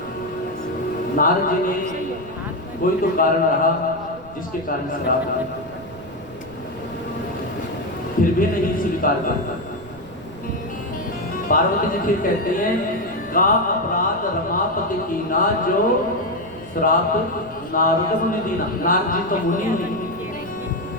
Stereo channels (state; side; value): noise; right; rumble, 21 dB below the sound